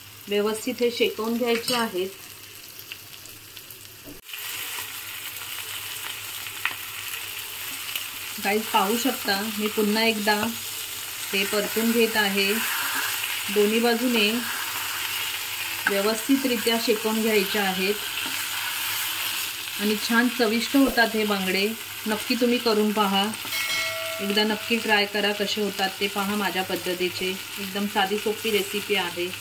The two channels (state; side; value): identical; both; correlation 1.00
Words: व्यवस्थित हे शेकवून घ्यायचे आहेत। गाईज पाहू शकता, मी पुन्हा एकदा हे परतून घेत आहे। दोन्ही बाजूने व्यवस्थितरित्या शेकवून घ्यायचे आहेत आणि छान चविष्ट होतात हे बांगडे। नक्की तुम्ही करून पहा, एकदा नक्की ट्राय करा, कसे होतात ते पहा माझ्या पद्धतीचे। एकदम साधी सोपी रेसिपी आहे।